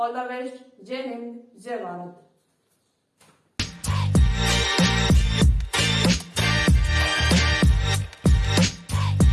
the best, जय हिंद, जय भारत।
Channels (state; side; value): identical; both; correlation 1.00